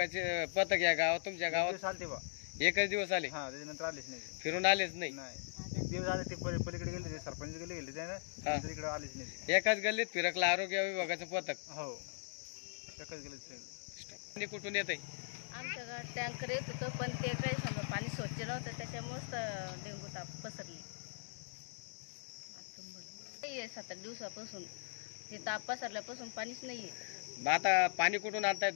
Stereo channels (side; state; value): right; silent; digital silence